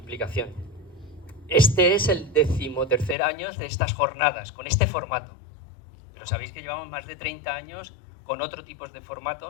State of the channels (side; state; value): right; drops out; at 3.2 s